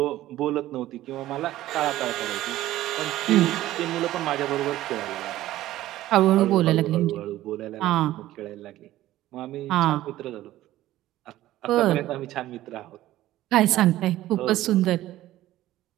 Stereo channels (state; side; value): quieter; left; 14.9 dB